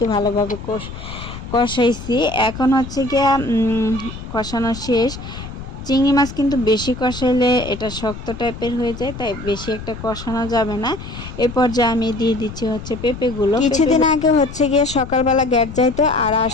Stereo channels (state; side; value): noise; left; rumble, 11 dB below the sound